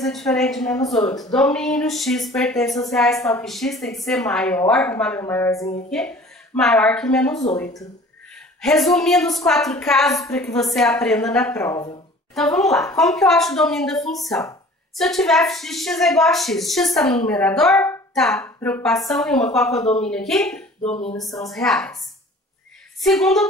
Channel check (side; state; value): both; normal; correlation 0.47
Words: é diferente de menos 8. Domínio, x pertence aos reais, tal que x tem que ser maior, vou marcar meu maiorzinho aqui, maior que menos 8. Resumindo os 4 casos para que você aprenda na prova. Então, vamos lá. Como que eu acho o domínio da função? Se eu tiver f de x é igual a x, x está no numerador? Tá. Preocupação nenhuma. Qual que é o domínio aqui? Domínio são os reais. Segundo